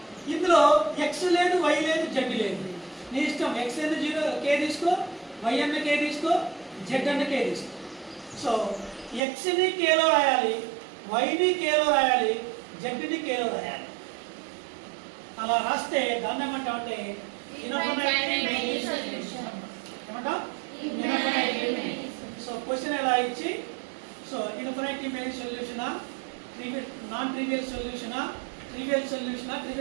ఇందులో x లేదు, y లేదు, z లేదు. నీ ఇష్టం. x ఏదో 0 k తీసుకో, y అన్న k తీసుకో, z అన్న k తీసుకో. సో x ని k లో రాయాలి, y ని k లో రాయాలి, z ని k లో రాయాలి. అలా రాస్తే దాన్ని ఏమంటామంటే ఇన్ఫినిటీ మెనీ సొల్యూషన్ ఏమంటాం. సో క్వశ్చన్ ఎలా ఇచ్చి సో ఇన్ఫినిటీ మెనీ సొల్యూషనా, నాన్ ట్రివియల్ సొల్యూషనా, ట్రివియల్ సొల్యూషనా,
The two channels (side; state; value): left; drops out; at 9.2 s